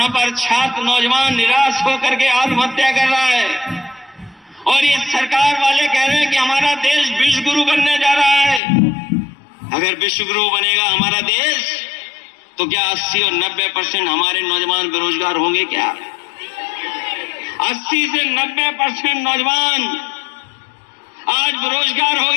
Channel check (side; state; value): right; drops out; at 8.6 s